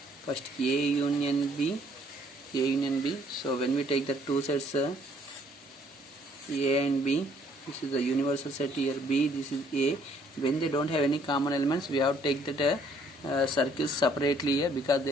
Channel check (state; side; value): normal; both; correlation 0.64